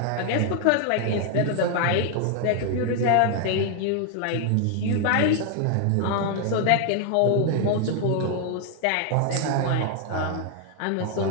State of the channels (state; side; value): different; both; correlation 0.00